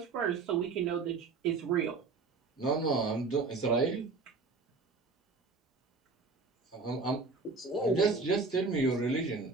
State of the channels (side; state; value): left; quieter; 4.2 dB